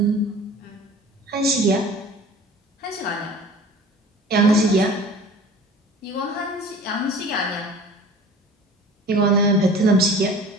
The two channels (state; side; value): normal; both; correlation 0.43